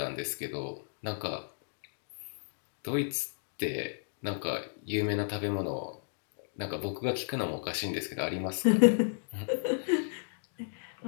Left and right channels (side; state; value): right; silent; digital silence